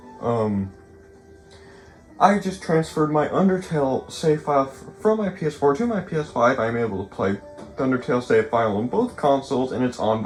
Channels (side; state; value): both; identical; correlation 1.00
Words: transferred my Undertale save file from my PS4 to my PS5. I'm able to play the Undertale save file on both consoles, and it's on